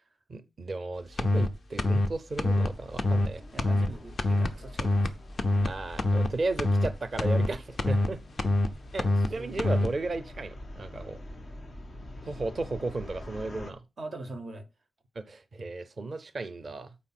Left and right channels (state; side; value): normal; both; correlation 0.91